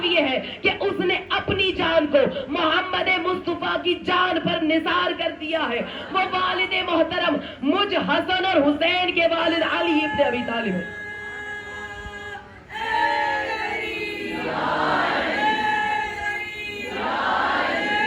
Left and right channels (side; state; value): both; identical; correlation 1.00